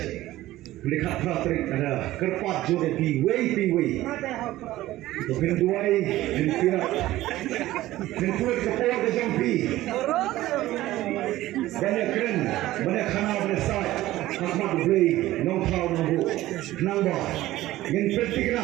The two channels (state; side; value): quieter; left; 16.0 dB